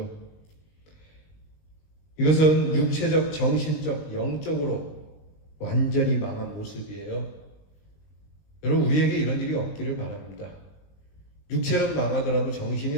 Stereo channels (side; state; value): right; late; 20 ms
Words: 이것은 육체적, 정신적, 영적으로 완전히 망한 모습이에요. 여러분 우리에게 이런 일이 없기를 바랍니다. 육체는 망하더라도